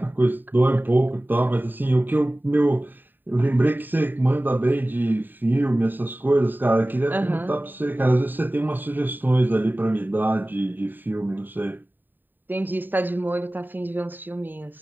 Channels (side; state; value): left; late; 0.091 ms